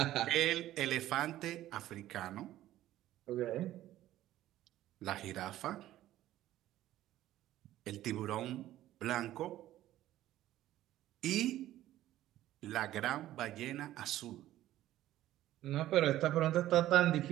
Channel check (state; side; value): quieter; left; 14.1 dB